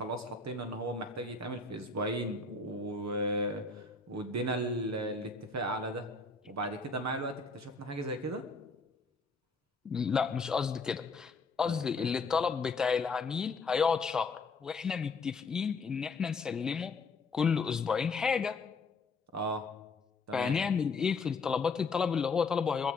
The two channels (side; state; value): right; quieter; 4.1 dB